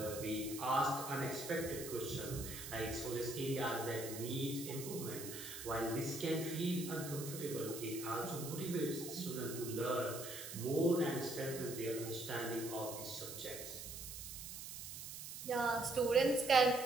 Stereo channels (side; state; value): right; noise; hiss, 9 dB below the sound